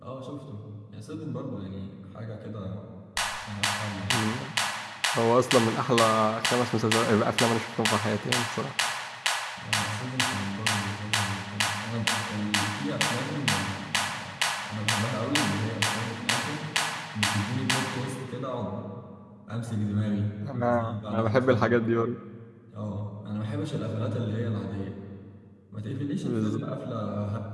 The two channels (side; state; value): both; identical; correlation 1.00